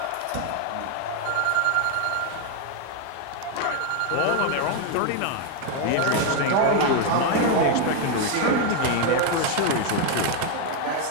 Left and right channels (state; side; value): different; both; correlation 0.01